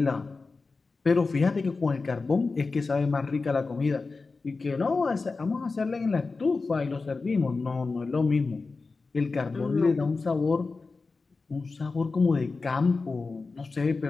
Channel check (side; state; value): right; quieter; 4.0 dB